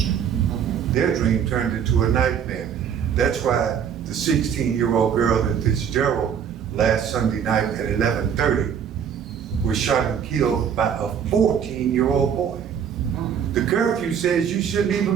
Their dream turned into a nightmare. That's why the 16-year-old girl in Fitzgerald last Sunday night at 11:30 was was shot and killed by a 14-year-old boy. The curfew says you shouldn't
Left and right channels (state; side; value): quieter; left; 8.0 dB